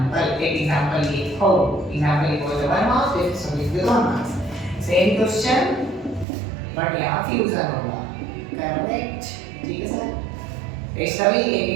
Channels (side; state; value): left; drops out; at 6.2 s